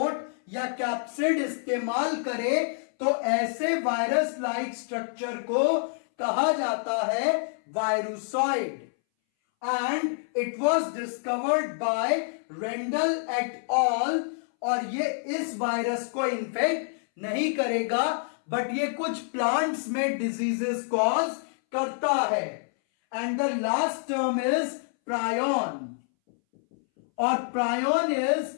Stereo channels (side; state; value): right; silent; 60 dB below the other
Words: या कैप्सिड इस्तेमाल करे, तो ऐसे वायरस लाइक स्ट्रक्चर को कहा जाता है virusoid. And it was discovered by Randall et al, और ये इस वायरस को इन्फेक्ट नहीं करेगा, बट ये कुछ प्लांट्स में डिजीजेस कॉज करता है। And the last term is prion, और प्रायोन इज